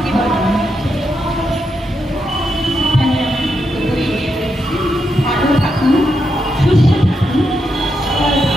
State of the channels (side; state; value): both; normal; correlation 0.83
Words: ভালো থাকুন, সুস্থ থাকুন।